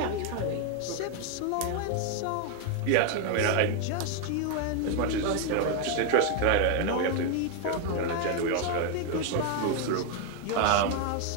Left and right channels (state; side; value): different; both; correlation 0.01